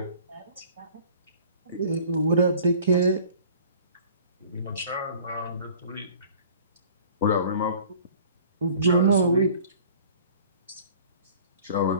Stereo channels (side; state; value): both; inverted; correlation -0.49